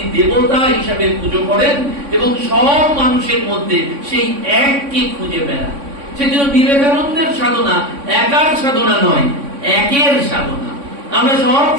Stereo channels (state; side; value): late; left; 3.6 ms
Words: দেবতা হিসাবে পুজো করেন এবং সব মানুষের মধ্যে সেই এককে খুঁজে বেড়ান। সেজন্য বিবেকানন্দের সাধনা একার সাধনা নয়, একের সাধনা। আমরা সব